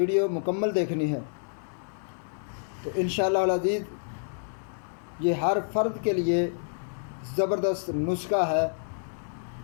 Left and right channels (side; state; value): right; silent; digital silence